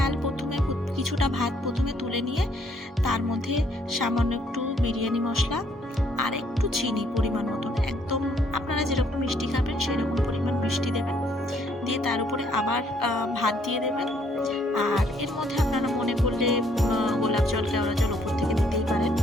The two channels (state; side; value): normal; both; correlation 0.67